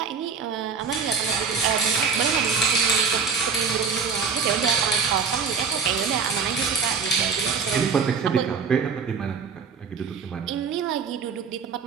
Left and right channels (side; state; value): left; quieter; 5.8 dB